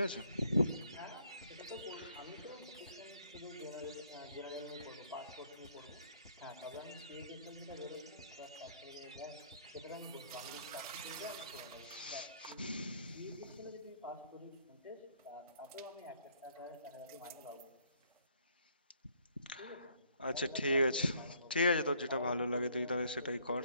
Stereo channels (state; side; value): inverted; both; correlation -0.64